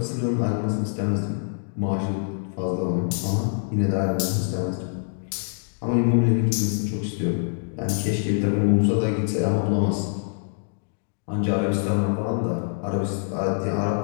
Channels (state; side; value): silent; right; digital silence